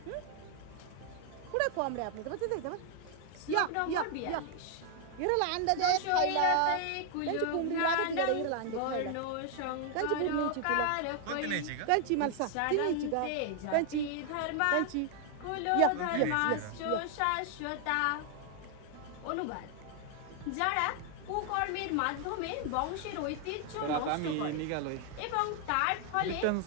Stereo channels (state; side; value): different; both; correlation 0.00